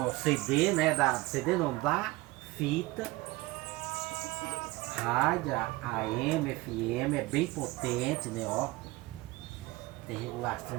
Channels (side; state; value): left; quieter; 20.9 dB